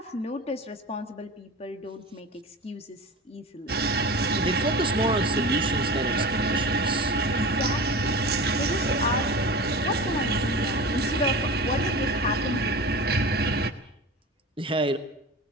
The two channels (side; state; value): both; normal; correlation 0.32